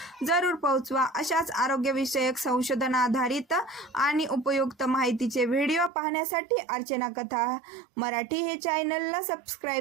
जरूर पोहोचवा. अशाच आरोग्यविषयक संशोधन आधारित आणि उपयुक्त माहितीचे व्हिडिओ पाहण्यासाठी अर्चना कथा मराठी हे चॅनलला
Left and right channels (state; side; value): drops out; left; at 5.9 s